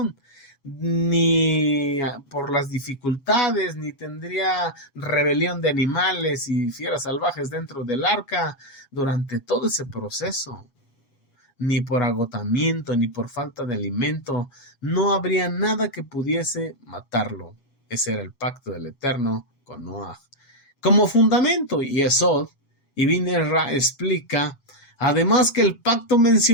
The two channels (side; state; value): right; late; 7.3 ms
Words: ni por las dificultades, ni tendría rebelión de animales y fieras salvajes dentro del arca durante todo ese proceso, ni por agotamiento, ni por falta de alimento, no habría nada que pudiese matarlo. Ese era el pacto del Eterno con Noah. Como fundamento, Yesod, Ibn Ezra explica, además, que el pacto